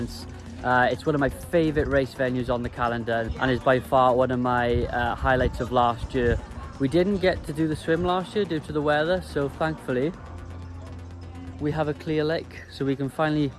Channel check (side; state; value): both; identical; correlation 1.00